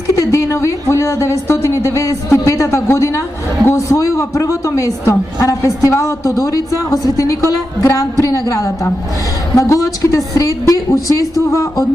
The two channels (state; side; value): normal; both; correlation 0.89